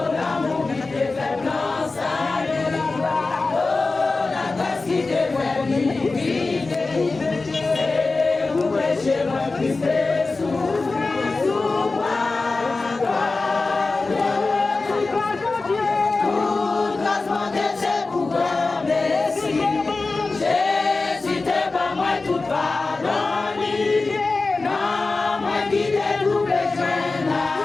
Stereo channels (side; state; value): right; quieter; 3.7 dB